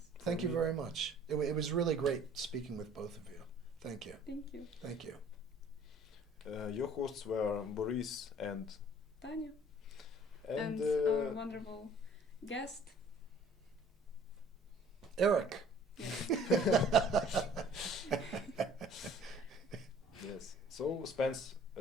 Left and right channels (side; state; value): both; normal; correlation 0.54